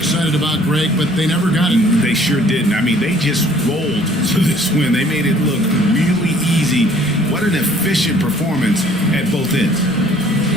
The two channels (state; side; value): normal; both; correlation 0.57